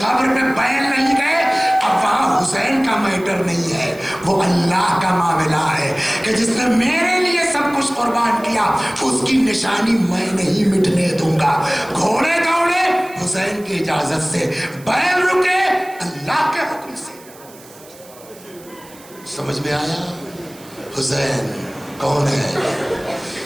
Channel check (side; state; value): right; noise; hiss, 22 dB below the sound